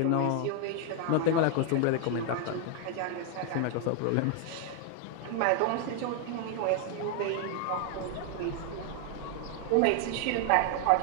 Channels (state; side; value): different; both; correlation 0.00